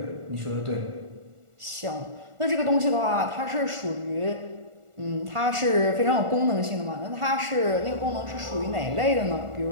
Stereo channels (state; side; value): late; left; 1.4 ms